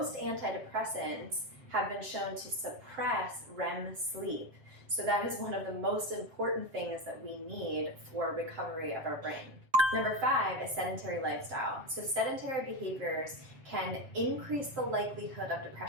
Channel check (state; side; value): late; left; 7.7 ms